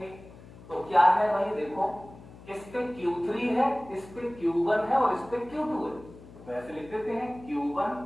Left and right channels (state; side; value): noise; left; hum, 19 dB below the sound